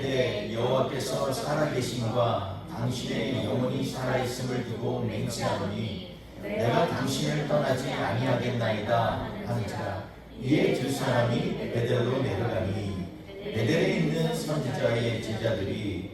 여호와께서 살아계심과 당신의 영혼이 살아있음을 두고 맹세하노니 내가 당신을 떠나지 아니하겠나이다 하는지라. 이에 두 사람이 베델로 내려가니 베델에 있는 선지자의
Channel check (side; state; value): both; identical; correlation 1.00